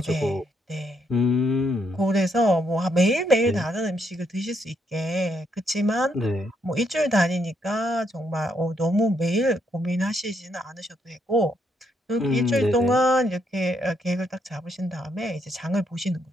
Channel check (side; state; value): both; normal; correlation 0.75